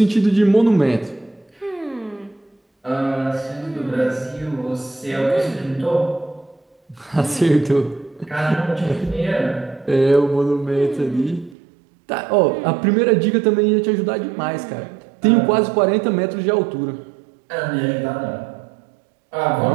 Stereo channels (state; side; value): drops out; left; at 11.6 s